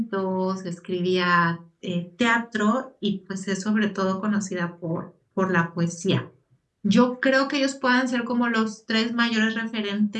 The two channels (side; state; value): both; identical; correlation 1.00